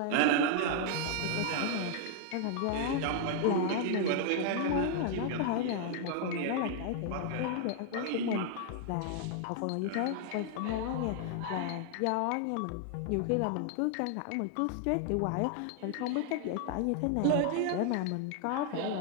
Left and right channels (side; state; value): both; different; correlation 0.00